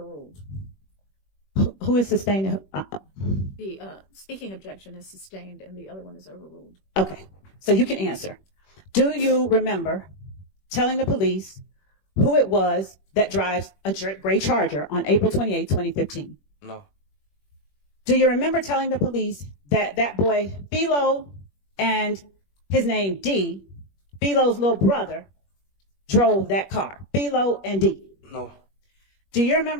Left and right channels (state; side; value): late; right; 21 ms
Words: Who is sustaining? The speaking objection is sustained and the other one is overruled. Okay, so you can answer. Do you remember telling the police who it was that drives a gray Charger on April 28, 2015? No. Do you remember telling the police that that boy, Philo, and his name D, Philo's little brother, drove that car? Philo and D. No. Do you